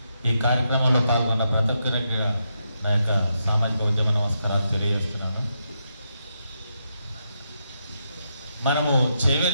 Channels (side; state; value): both; inverted; correlation -0.82